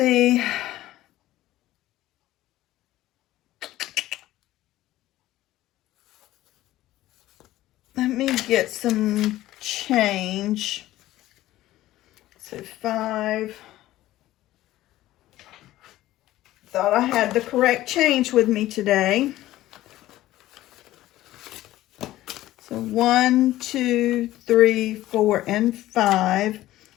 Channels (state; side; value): quieter; right; 15.4 dB